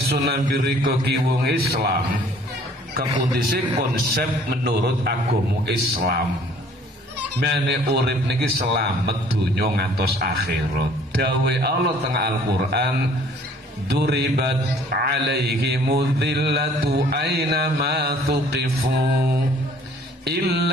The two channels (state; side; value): normal; both; correlation 0.56